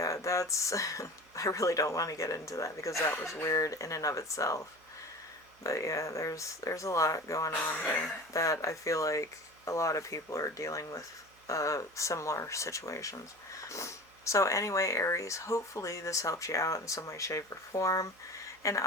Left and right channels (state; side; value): noise; right; hum, 30 dB below the sound